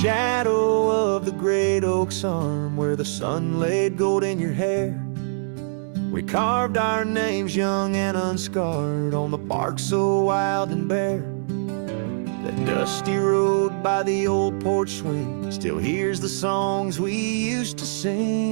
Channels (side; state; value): left; silent; digital silence